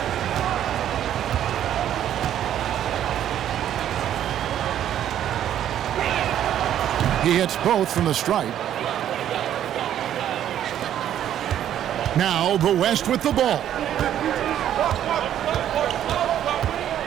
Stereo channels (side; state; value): left; quieter; 10.8 dB